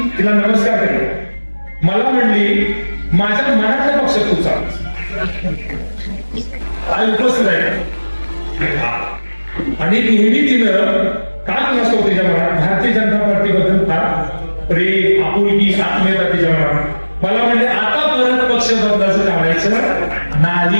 तिला नमस्कार केला. मला म्हणली, माझ्या मनातल्या पक्षात तू चाल. आई उपस्थित आहे आणि नेहमी तिनं काय नसतो तिच्या मनात भारतीय जनता पार्टीबद्दल फार प्रेम, आपुलकी, आत्मीयता तिच्या मनात. मला म्हणजे आता परत पक्ष बदलायचं काढायचं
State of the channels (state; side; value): inverted; both; correlation -1.00